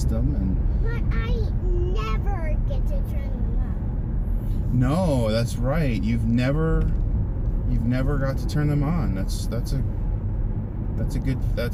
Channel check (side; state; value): both; identical; correlation 1.00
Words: And But I never get to turn them on. no, that's right. You've never got to turn them on. That's